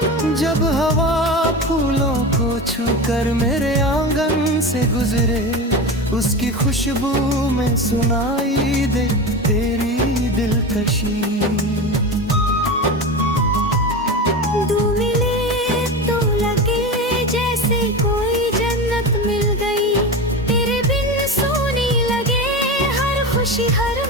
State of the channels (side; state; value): both; normal; correlation 0.25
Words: जब हवा फूलों को छूकर मेरे आंगन से गुजरे, उसकी खुशबू में सुनाई दे तेरी दिलकशी। दो मिले तो लगे जैसे